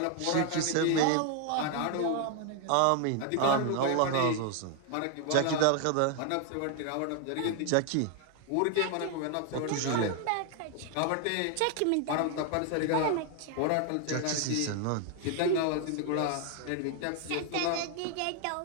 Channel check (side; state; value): both; different; correlation 0.00